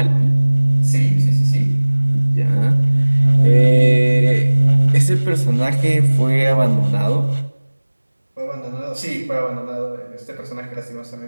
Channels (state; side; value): inverted; both; correlation -1.00